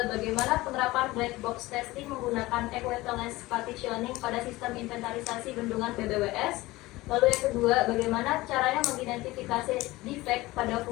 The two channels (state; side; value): quieter; right; 19.4 dB